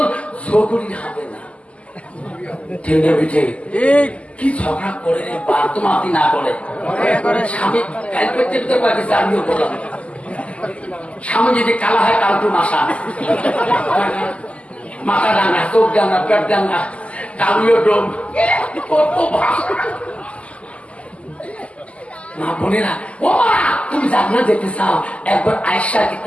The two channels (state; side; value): late; right; 0.061 ms